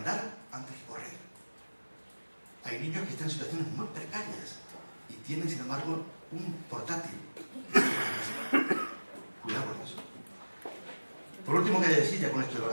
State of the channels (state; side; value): inverted; both; correlation -1.00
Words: antes que correr. hay niños que están en situaciones muy precarias y tienen, sin embargo, un portátil. Cuidado con eso. Por último, quería decir, ya con esto de